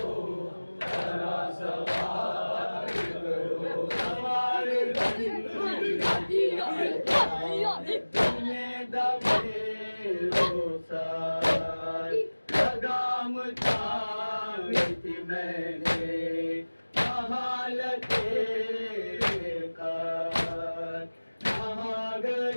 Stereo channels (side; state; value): both; inverted; correlation -1.00